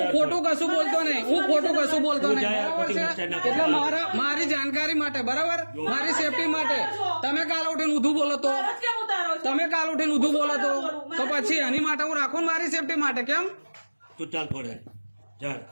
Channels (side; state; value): both; inverted; correlation -1.00